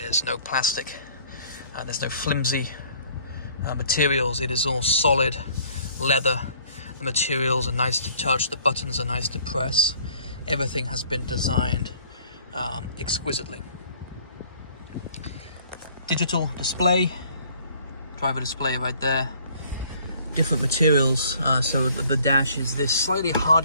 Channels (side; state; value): both; inverted; correlation -0.57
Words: no plastic, there's no flimsy materials. It is all solid leather. The materials are nice to touch, the buttons are nice to press. Everything has been designed exquisitely. Digital display, driver display right there. Different materials, so the dash is this slightly